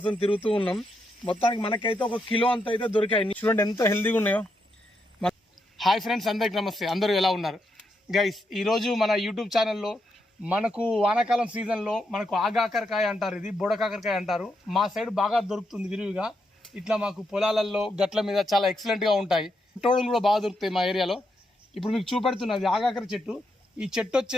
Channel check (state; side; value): normal; both; correlation 0.81